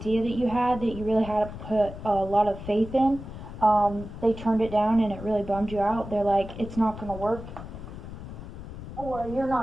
that you had, that you really had to put a lot of faith in, they turned it down and it really bummed you out. They're like, it's not going to work, or you're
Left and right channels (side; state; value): left; noise; rumble, 11 dB below the sound